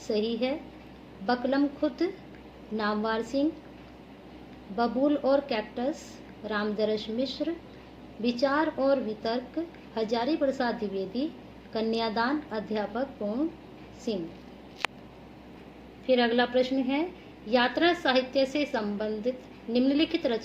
है। बकलम खुद नामवर सिंह, बबूल और कैक्टस रामदरस मिश्र, विचार और वितर्क हजारी प्रसाद द्विवेदी, कन्यादान अध्यापक पूर्ण सिंह। फिर अगला प्रश्न है, यात्रा साहित्य से संबंधित निम्नलिखित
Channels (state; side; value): identical; both; correlation 1.00